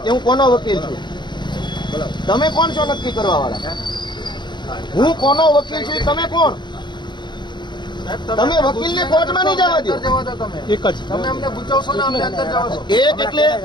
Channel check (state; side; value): late; right; 0.22 ms